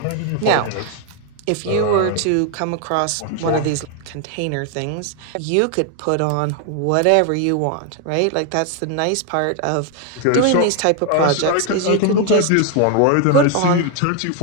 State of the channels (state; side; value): different; both; correlation 0.01